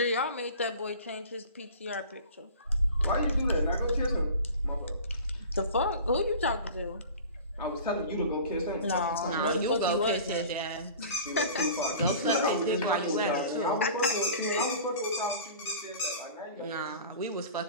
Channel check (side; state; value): both; inverted; correlation -0.40